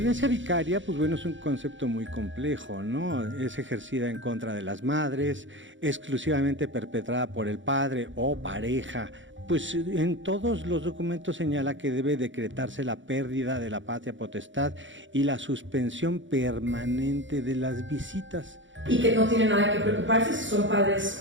vicaria, pues bueno, es un concepto muy complejo, ¿no? Es ejercida en contra de las madres, exclusivamente perpetrada por el padre o pareja. Pues en todos los documentos señala que debe decretarse la pérdida de la patria potestad y la suspensión permanente de las visitas. Y que no tiene nada que preocuparse si son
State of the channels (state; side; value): late; left; 0.55 ms